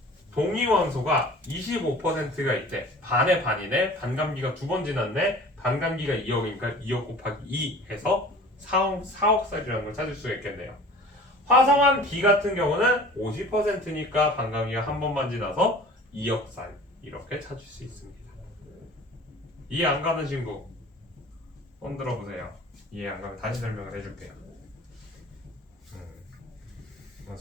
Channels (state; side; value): normal; both; correlation 0.43